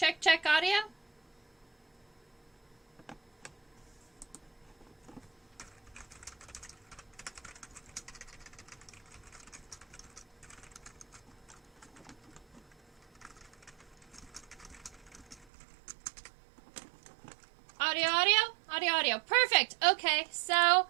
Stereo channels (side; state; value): left; drops out; at 15.5 s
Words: check audio. Audio, audio, audio, audio. Perfect. Okay, so,